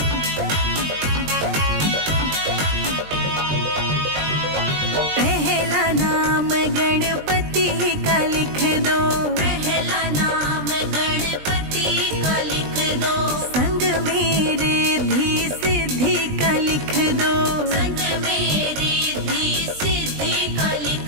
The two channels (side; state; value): left; late; 20 ms